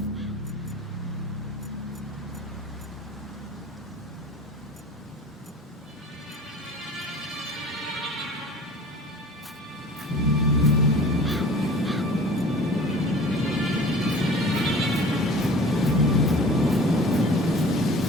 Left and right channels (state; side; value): normal; both; correlation 0.43